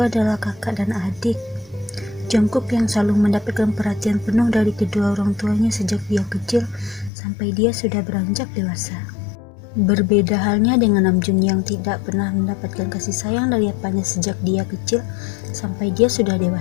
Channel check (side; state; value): right; drops out; at 7.1 s